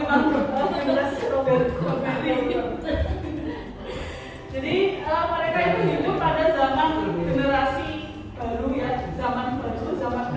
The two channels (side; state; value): both; identical; correlation 1.00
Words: generasi strawberry. Jadi mereka itu hidup pada zaman generasi baru ya, zaman baru, zaman